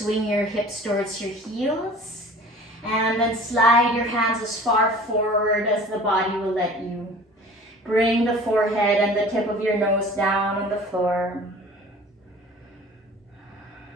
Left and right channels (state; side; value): normal; both; correlation 0.45